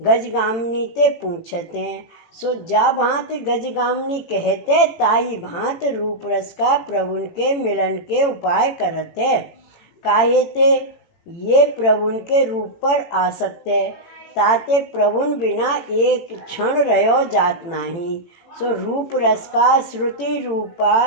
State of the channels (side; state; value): right; late; 18 ms